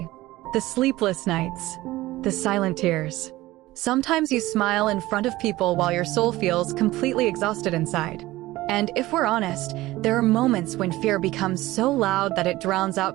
the sleepless nights, the silent tears. Sometimes you smile in front of people while your soul feels completely exhausted inside. And if we're honest, there are moments when fear becomes so loud that it drowns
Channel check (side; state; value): left; quieter; 17.7 dB